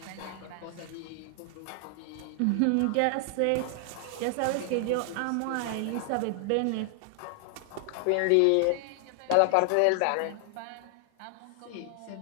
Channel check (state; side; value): different; both; correlation 0.00